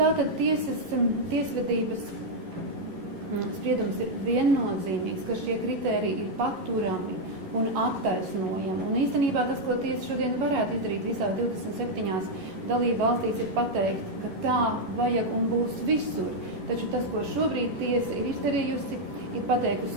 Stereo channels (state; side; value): late; left; 11 ms